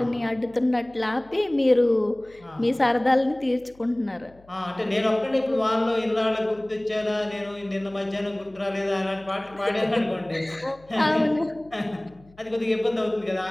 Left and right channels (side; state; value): left; noise; hum, 27 dB below the sound